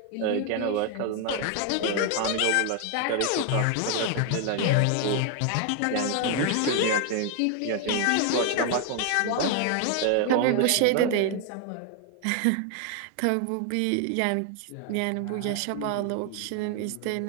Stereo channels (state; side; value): different; both; correlation 0.00